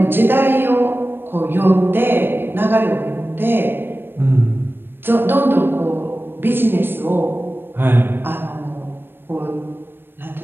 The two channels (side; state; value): left; late; 0.099 ms